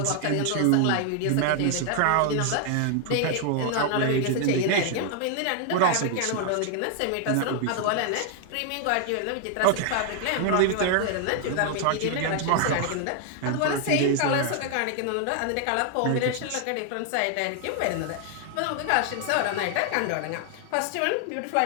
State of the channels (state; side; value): different; both; correlation 0.00